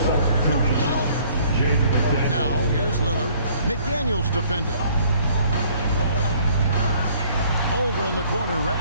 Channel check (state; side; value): inverted; both; correlation -0.59